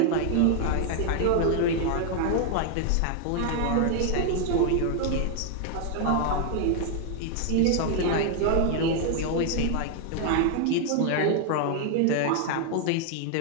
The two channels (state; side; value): different; both; correlation 0.00